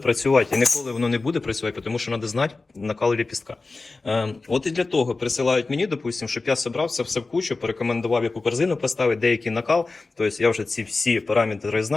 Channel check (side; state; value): right; quieter; 3.7 dB